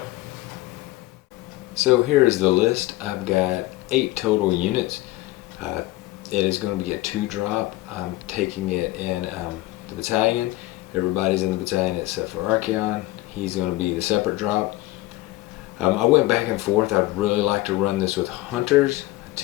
So here is the list. I've got 8 total units. It is going to be a 2-drop. I'm taking it in the battalion. Everybody's in the battalion except for Archaon. He's going to be the separate drop. I went back and forth. I'd really like to run this with hunters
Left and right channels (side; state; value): right; quieter; 18.0 dB